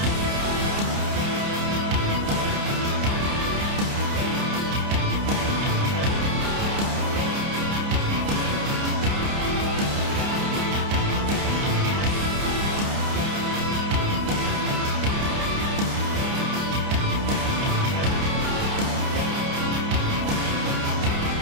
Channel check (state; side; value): late; left; 29 ms